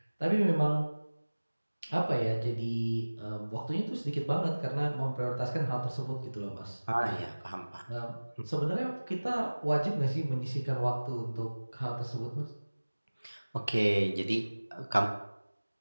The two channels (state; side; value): inverted; both; correlation -1.00